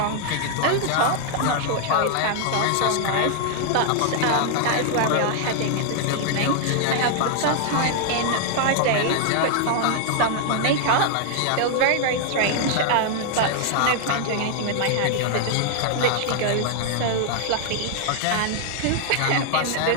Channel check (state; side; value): different; both; correlation 0.00